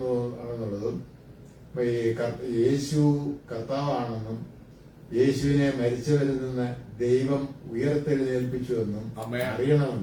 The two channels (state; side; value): identical; both; correlation 1.00